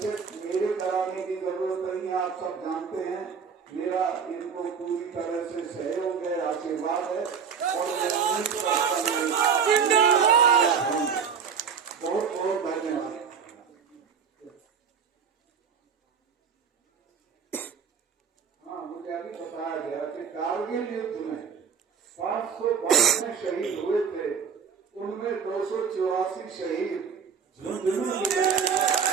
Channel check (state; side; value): quieter; left; 6.5 dB